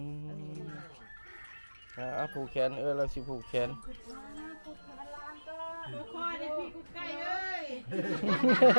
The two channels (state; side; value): inverted; both; correlation -1.00